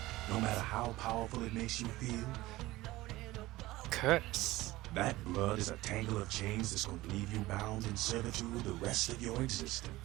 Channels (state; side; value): quieter; left; 18.2 dB